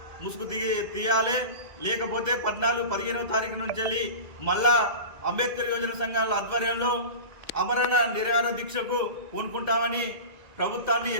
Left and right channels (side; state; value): left; late; 2.0 ms